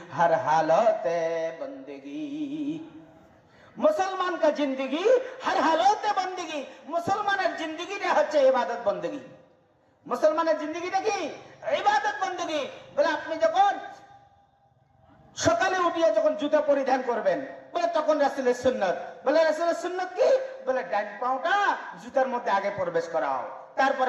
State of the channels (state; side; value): identical; both; correlation 1.00